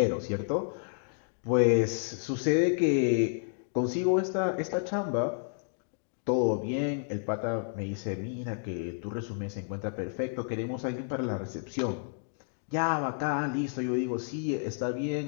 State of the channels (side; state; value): right; silent; digital silence